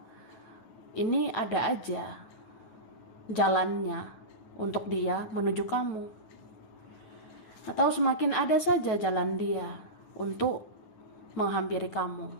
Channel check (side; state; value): right; late; 9.4 ms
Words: ini ada aja jalannya untuk dia menuju kamu. Atau semakin ada saja jalan dia untuk menghampiri kamu.